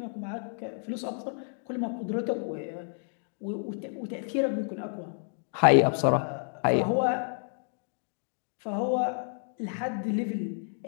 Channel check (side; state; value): right; silent; 58 dB below the other